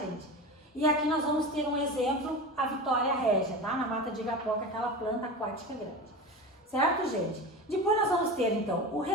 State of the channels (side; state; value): both; normal; correlation 0.27